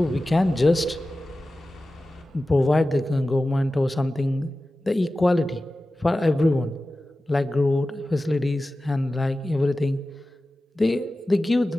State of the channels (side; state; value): both; normal; correlation 0.95